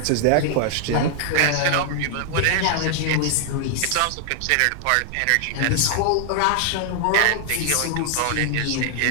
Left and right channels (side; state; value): both; different; correlation -0.01